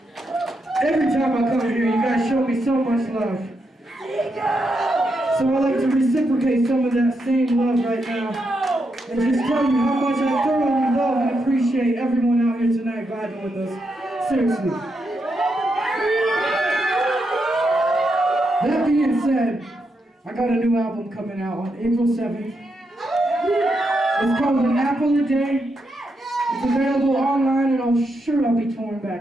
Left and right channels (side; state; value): both; normal; correlation 0.83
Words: Every time I come here, you guys show me so much love. So I like to reciprocate some of that same love right now. And just tell you how much I thoroughly love and appreciate everyone out here tonight vibing with us. Seriously. That being said, I got a new album coming out on April 7th. It's called An Apple a Day. It's available online and I'm sure I'll be touring